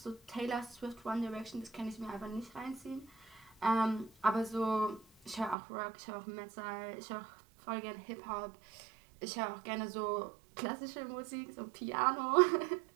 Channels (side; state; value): left; drops out; at 5.6 s